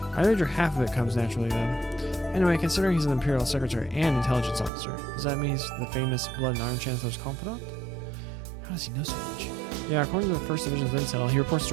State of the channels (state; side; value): drops out; left; at 4.7 s